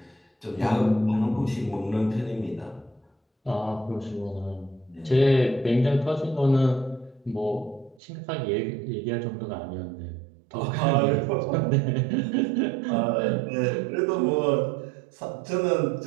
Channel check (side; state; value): left; drops out; at 8.0 s